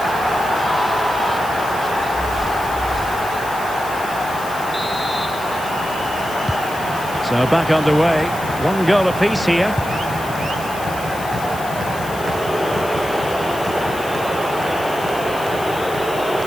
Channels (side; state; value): left; noise; hiss, 15 dB below the sound